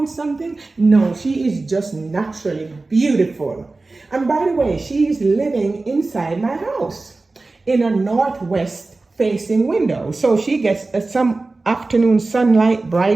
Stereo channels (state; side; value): quieter; left; 3.4 dB